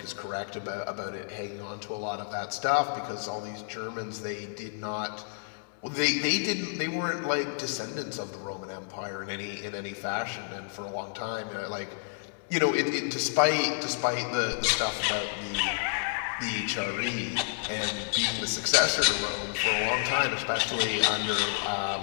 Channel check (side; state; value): right; silent; digital silence